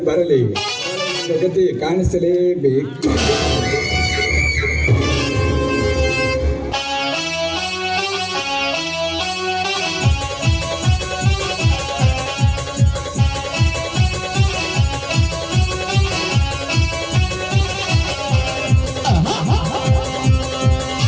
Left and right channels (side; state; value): both; identical; correlation 1.00